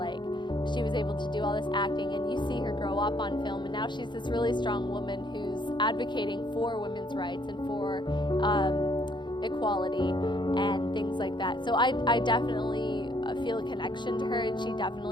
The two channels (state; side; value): late; right; 0.22 ms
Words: she was able to do all this acting, and you see her grow up on film, and now she's this really strong woman who's advocating for women's rights and for equality and things like that. So I definitely feel a connection to her, and she